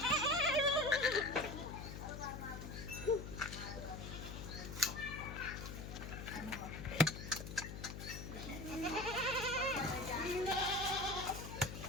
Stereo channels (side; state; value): left; noise; hum, 8 dB below the sound